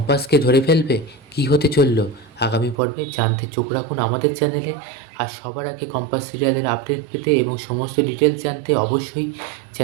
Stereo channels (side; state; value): left; drops out; at 2.8 s